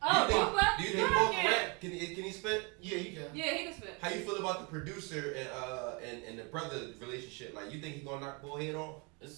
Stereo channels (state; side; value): quieter; left; 31.3 dB